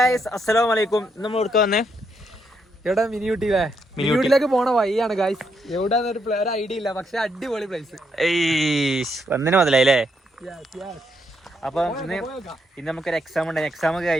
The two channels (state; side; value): normal; both; correlation 0.77